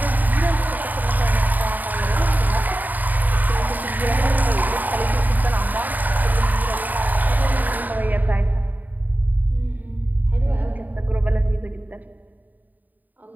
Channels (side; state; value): left; late; 0.084 ms